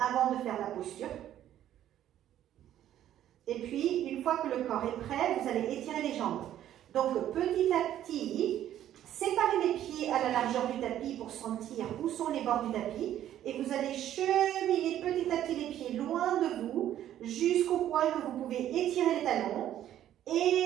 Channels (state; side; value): quieter; left; 11.7 dB